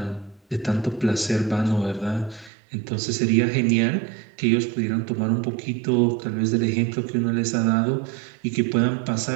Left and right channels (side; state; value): left; drops out; at 2.5 s